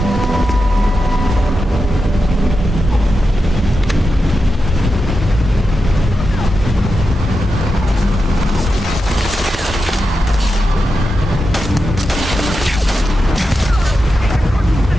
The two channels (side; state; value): both; normal; correlation 0.89